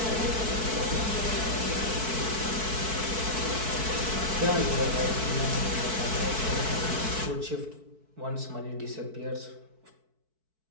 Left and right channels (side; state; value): left; late; 4.6 ms